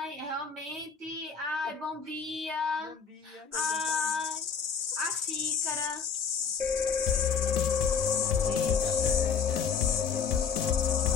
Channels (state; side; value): quieter; right; 6.3 dB